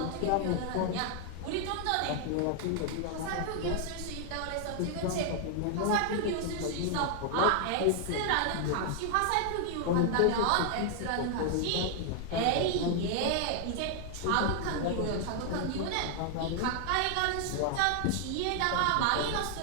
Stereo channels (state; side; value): different; both; correlation 0.00